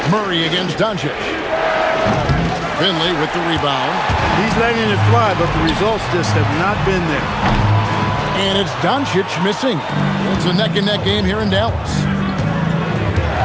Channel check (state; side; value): identical; both; correlation 1.00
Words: Murray against Doncic. Finley with the rebound. He's letting it fly, but the results just have not been there. And it's Doncic missing. It's a neck-and-neck game here in Dallas.